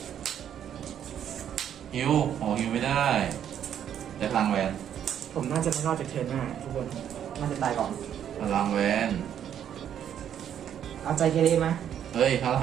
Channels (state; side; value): quieter; left; 9.6 dB